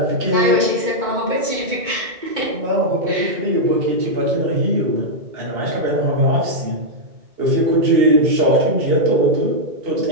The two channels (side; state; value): left; late; 2.2 ms